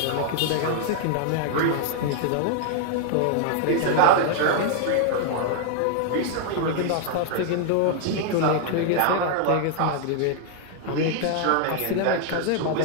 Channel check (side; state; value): both; different; correlation 0.00